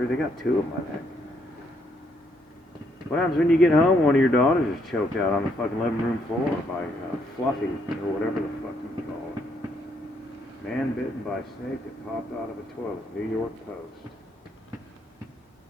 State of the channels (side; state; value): both; normal; correlation 0.73